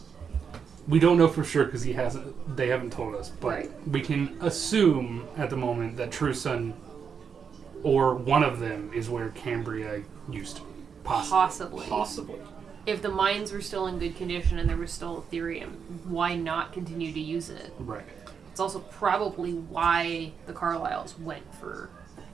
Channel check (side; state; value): left; quieter; 6.6 dB